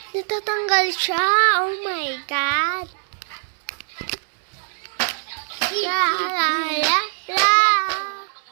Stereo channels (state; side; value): silent; left; 64 dB below the other